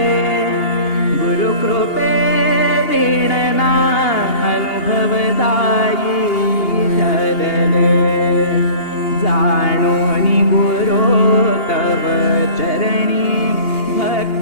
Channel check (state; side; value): late; right; 2.8 ms